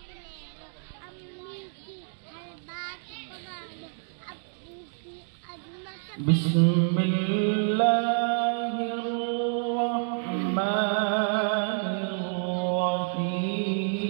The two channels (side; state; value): left; silent; 59 dB below the other